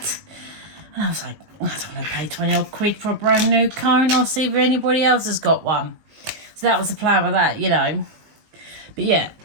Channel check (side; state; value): left; late; 19 ms